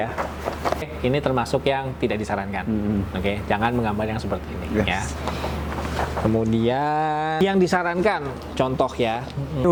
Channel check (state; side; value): identical; both; correlation 1.00